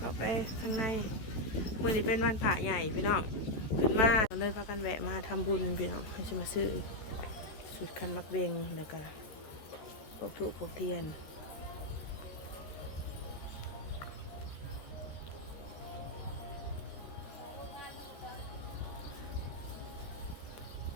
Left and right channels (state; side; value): late; right; 14 ms